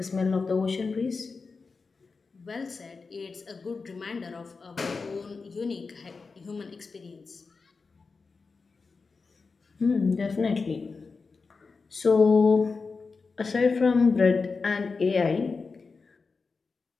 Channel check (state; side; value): quieter; right; 4.5 dB